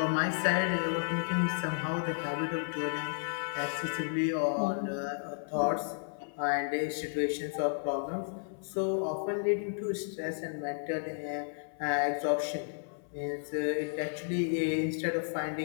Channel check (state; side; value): silent; right; 56 dB below the other